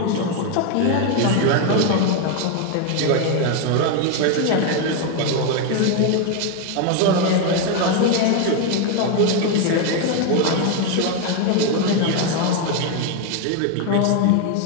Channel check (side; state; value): both; different; correlation 0.01